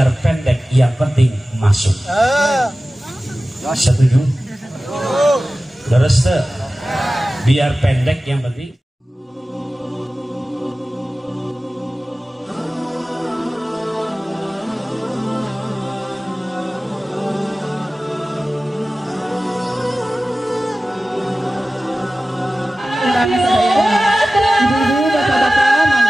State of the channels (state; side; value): normal; both; correlation 0.96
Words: pendek yang penting masuk. Setuju? Terus tuh, biar pendek yang penting. Ibu-ibu, bapak-bapak,